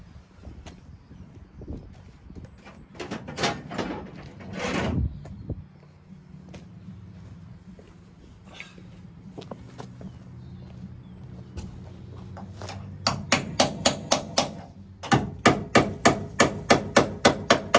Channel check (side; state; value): both; identical; correlation 1.00